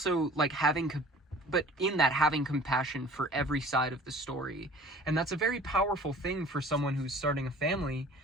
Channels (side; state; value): both; normal; correlation 0.47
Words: like having compassion for every side of the story. And that's a very powerful thing for someone who's starting a family,